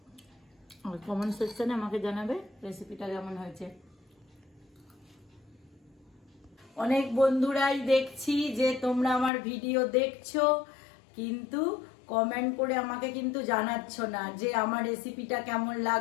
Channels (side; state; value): right; drops out; at 9.3 s